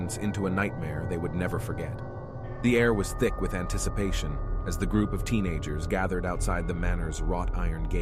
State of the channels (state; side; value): identical; both; correlation 1.00